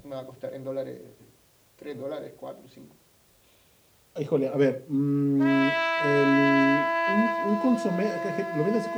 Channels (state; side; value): identical; both; correlation 1.00